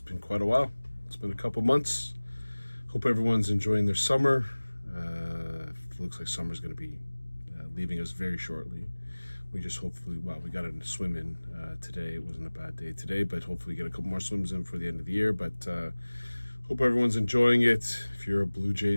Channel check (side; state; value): both; inverted; correlation -1.00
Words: quite a while. It's been a couple months. Hope everyone's enjoying their summer. It looks like summer's going to be leaving us very shortly. We just hopefully, we got a swim in today. It wasn't a bad day today, but hopefully get a couple more swims in for the end of the year. But hope everyone's enjoying it. If you're a Blue